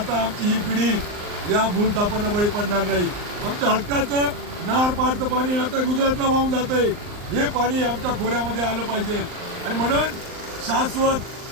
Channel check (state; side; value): late; left; 39 ms